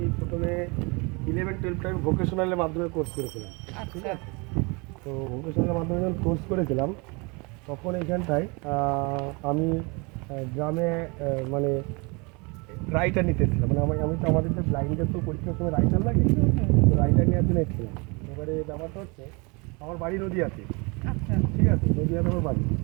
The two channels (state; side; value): quieter; left; 29.1 dB